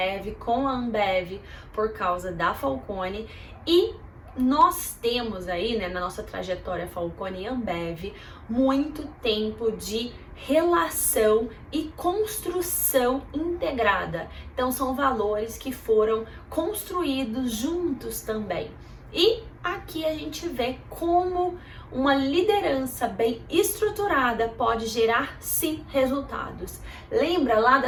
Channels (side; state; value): both; identical; correlation 1.00